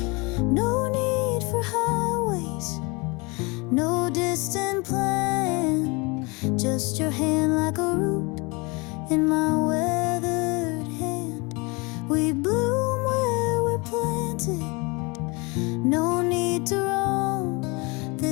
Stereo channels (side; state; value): right; quieter; 27.9 dB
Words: No need for highways, no distant plan, just your hand like a root in my weathered hand. We bloom where we're planted, no need to roam.